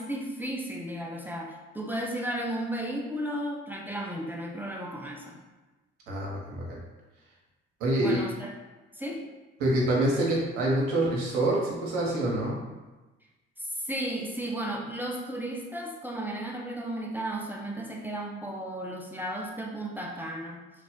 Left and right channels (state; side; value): normal; both; correlation 0.56